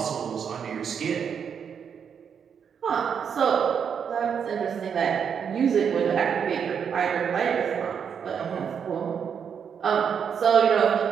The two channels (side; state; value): left; quieter; 7.3 dB